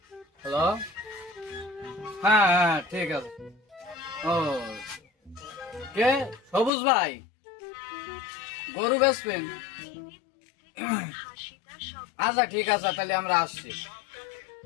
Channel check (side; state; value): right; drops out; at 6.7 s